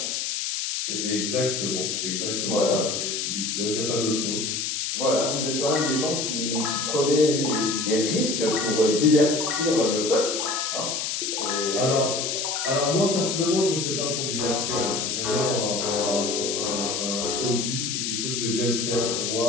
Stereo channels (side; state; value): left; noise; hiss, 1 dB below the sound